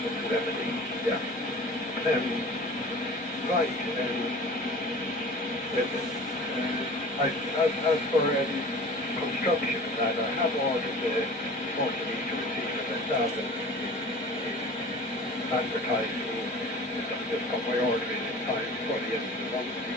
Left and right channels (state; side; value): normal; both; correlation 0.40